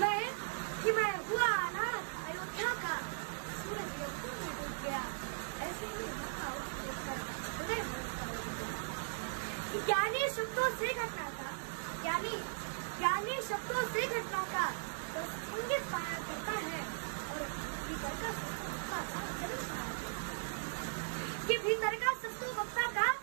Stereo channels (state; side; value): silent; left; digital silence